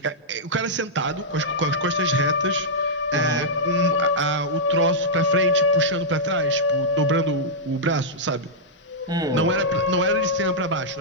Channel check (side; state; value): both; normal; correlation -0.09